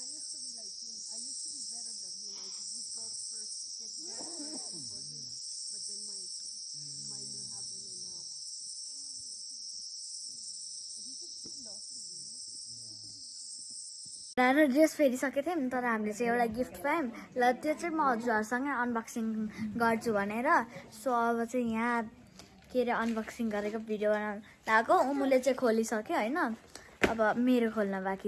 र ड्रेस फेरिसकेको थियौँ तर हामीले चाहिँ एउटा गिफ्ट पायौँ ल त्यो चाहिँ म हजुरहरूसँगै अनबक्सिङ गर्छु भनेर सो अब चाहिँ यहाँ के अरे अनबक्सिङ गरेको भिडियो बनाउनु लगाएको उमुले चाहिँ खोलिसक्यो होइन अब मेरो खोल्न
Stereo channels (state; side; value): identical; both; correlation 1.00